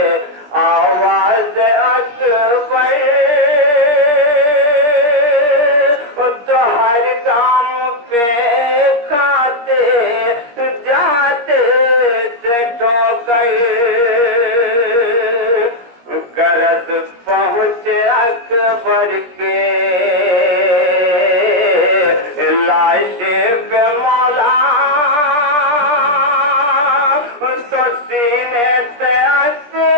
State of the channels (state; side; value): late; left; 17 ms